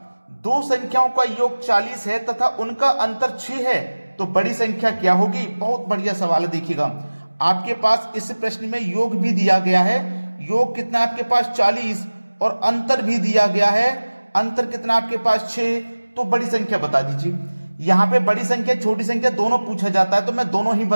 दो संख्याओं का योग 40 है तथा उनका अंतर 6 है, तो बड़ी संख्या क्या होगी। बहुत बढ़िया सवाल है, देखिएगा आपके पास इस प्रश्न में योग भी दिया गया है। योग कितना है आपके पास 40 और अंतर भी दिया गया है, अंतर कितना आपके पास 6। तो बड़ी संख्या बता दीजिए। यहां पे बड़ी संख्या छोटी संख्या दोनों पूछा जाता है तो मैं दोनों ही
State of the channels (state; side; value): inverted; both; correlation -1.00